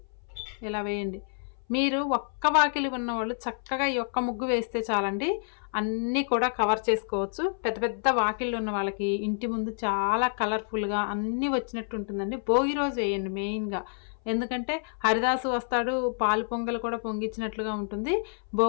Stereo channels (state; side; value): silent; right; 58 dB below the other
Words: ఇలా వేయండి. మీరు ఒక్క వాకిలి ఉన్నవాళ్ళు చక్కగా ఈ ఒక్క ముగ్గు వేస్తే చాలండి, అన్నీ కూడా కవర్ చేసుకోవచ్చు. పెద్ద పెద్ద వాకిళ్ళు ఉన్న వాళ్ళకి ఇంటి ముందు చాలా కలర్ఫుల్గా అన్నీ వచ్చినట్టు ఉంటుందండి. భోగి రోజు వేయండి మెయిన్గా, ఎందుకంటే హరిదాసు వస్తాడు, పాలు పొంగలు కూడా పొంగిచ్చినట్లుగా ఉంటుంది.